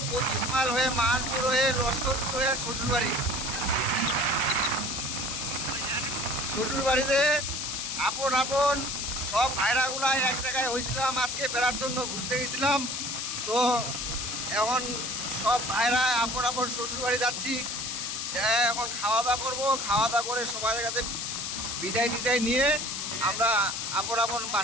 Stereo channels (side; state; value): left; noise; hiss, 3 dB below the sound